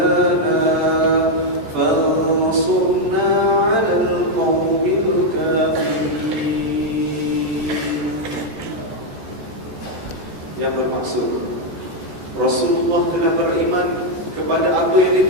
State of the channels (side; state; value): left; late; 14 ms